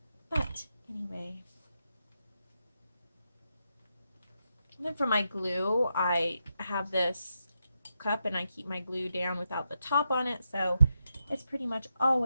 But anyway. And then for my glue, I have this cup and I keep my glue down without the top on it, so it's pretty much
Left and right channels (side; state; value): both; inverted; correlation -0.84